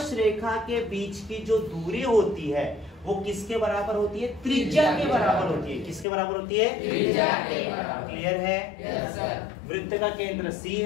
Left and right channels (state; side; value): drops out; right; at 6.1 s